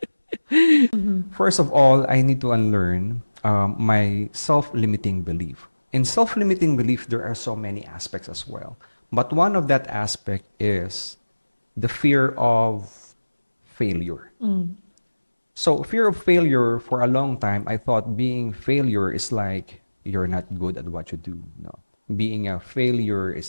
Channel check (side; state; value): both; inverted; correlation -1.00